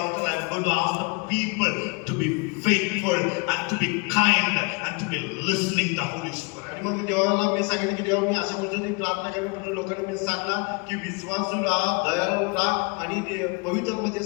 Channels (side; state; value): right; quieter; 31.3 dB